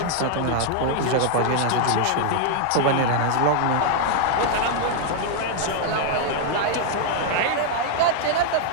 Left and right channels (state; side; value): different; both; correlation 0.00